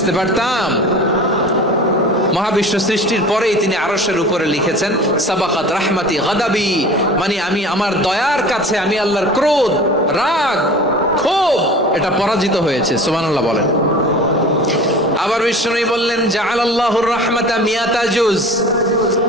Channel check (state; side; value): normal; both; correlation 0.40